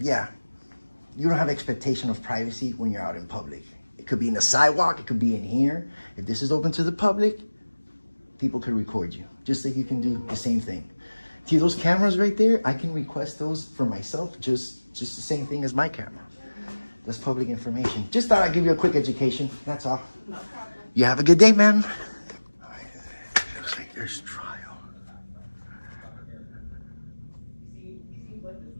you don't have expectation of privacy when you're out in public. It could be in the sidewalk. It could be in here. If this is open to the public, people could record you. Just like you can do the same thing. See those cameras right there? I can request those for myself, just the same thing as my camera. That's public information. Just thought I'd give you a quick education. That's all. No problem. You have a good day, ma'am. Looks like there's trial.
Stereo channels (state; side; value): inverted; both; correlation -1.00